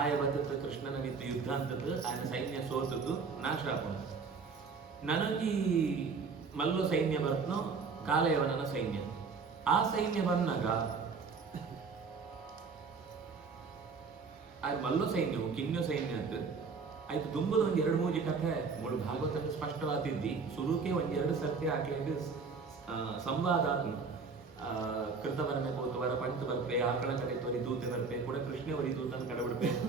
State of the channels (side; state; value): left; quieter; 4.9 dB